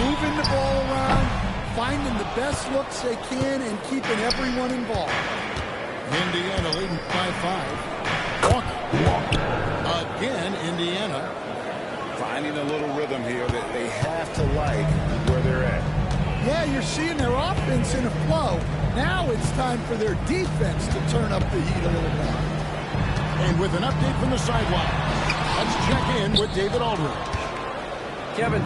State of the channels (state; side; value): identical; both; correlation 1.00